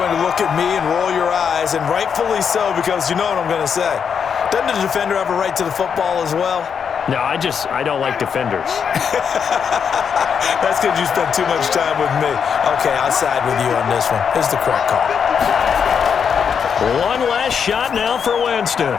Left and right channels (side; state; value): right; quieter; 6.9 dB